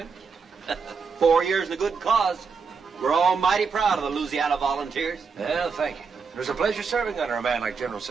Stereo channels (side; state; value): left; quieter; 5.4 dB